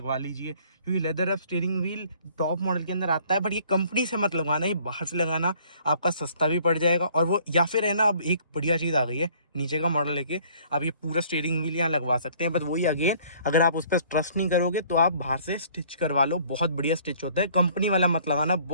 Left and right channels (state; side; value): inverted; both; correlation -0.57